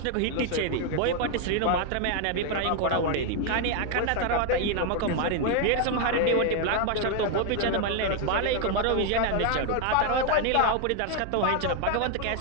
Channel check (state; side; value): different; both; correlation 0.01